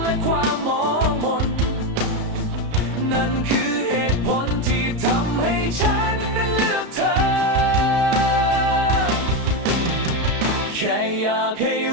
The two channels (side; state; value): left; late; 33 ms